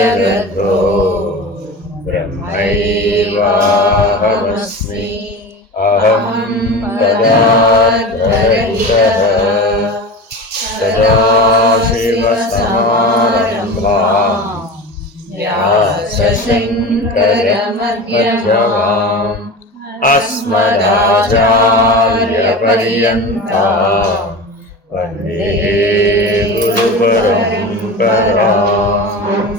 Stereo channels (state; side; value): normal; both; correlation 0.30